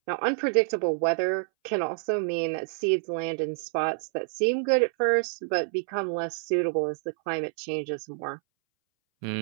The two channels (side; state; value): left; silent; 60 dB below the other